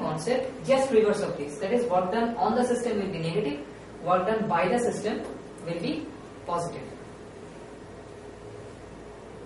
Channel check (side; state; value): both; identical; correlation 1.00